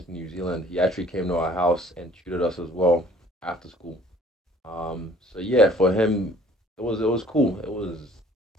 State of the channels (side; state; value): both; normal; correlation 0.55